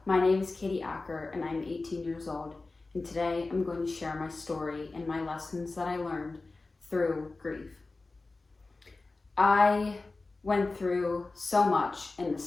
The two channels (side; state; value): right; quieter; 3.5 dB